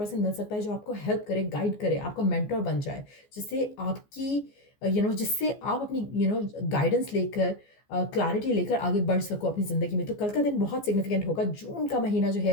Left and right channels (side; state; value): right; late; 14 ms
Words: मिल सकता है जो आपको हेल्प करे, गाइड करे, आपका मेंटर बन जाए, जिससे आपकी जिससे आप अपनी गाइडेंस लेकर, क्लैरिटी लेकर आगे बढ़ सको अपनी ज़िंदगी में। तो कल का दिन बहुत सिग्निफिकेंट होगा। जून का महीना जो